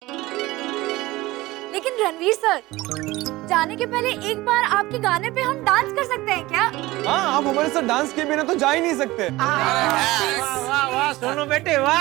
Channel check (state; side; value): quieter; left; 19.2 dB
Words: लेकिन रणवीर रणवीर सर, जाने के पहले एक बार आपके गाने पे हम डांस कर सकते हैं क्या? हाँ, आप हमारे साथ डांस के बिना तो जा ही नहीं सकते। वाह वाह सोनू बेटे